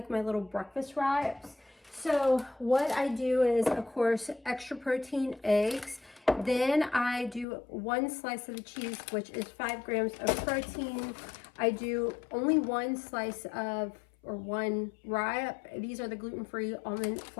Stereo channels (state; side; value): drops out; right; at 7.5 s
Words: my little breakfast wraps. So what I do is, of course, extra protein eggs. Then I do 1 slice of the cheese, which is 5 grams of protein. I do only 1 slice of or one wrap. These are the gluten-free almond